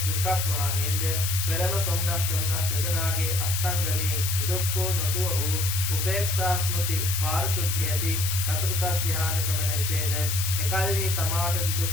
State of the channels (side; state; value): left; noise; hiss, 2 dB below the sound